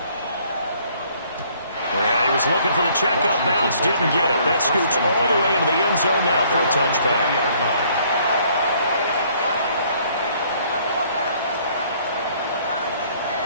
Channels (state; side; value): inverted; both; correlation -0.62